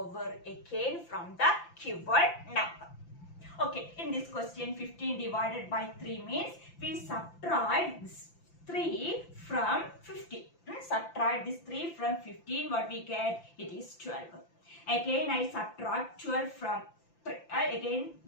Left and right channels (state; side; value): late; right; 5.9 ms